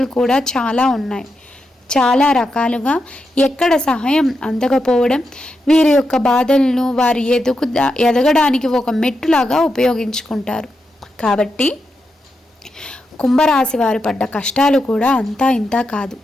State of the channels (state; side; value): normal; both; correlation 0.86